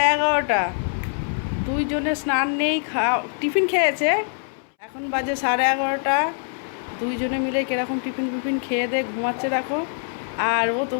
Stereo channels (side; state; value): right; silent; 63 dB below the other